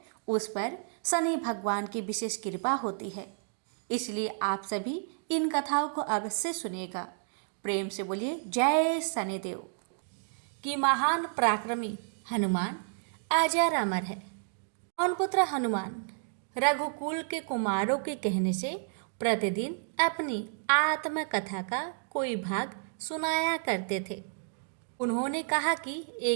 उस पर शनि भगवान की विशेष कृपा होती है, इसलिए आप सभी इन कथाओं को अवश्य सुनिएगा। प्रेम से बोलिए जय शनिदेव। कि महान पराक्रमी हनुमान अजर अमर है। पवन पुत्र हनुमान रघुकुल के कुमारों के कहने से प्रतिदिन अपनी आत्मकथा का कोई भाग सुनाया करते थे। उन्होंने कहा कि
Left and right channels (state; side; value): silent; left; digital silence